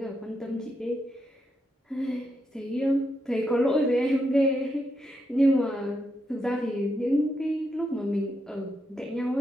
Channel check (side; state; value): both; normal; correlation 0.82